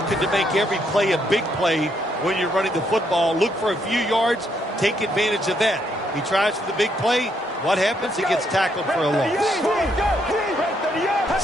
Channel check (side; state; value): both; normal; correlation 0.74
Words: to make every play a big play when you're running the football. Look for a few yards, take advantage of that. He tries for the big play. What happens? He gets tackled for a loss.